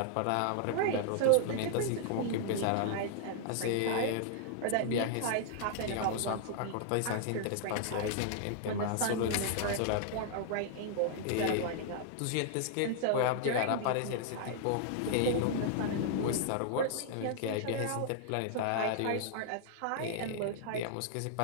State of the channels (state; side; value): different; both; correlation -0.01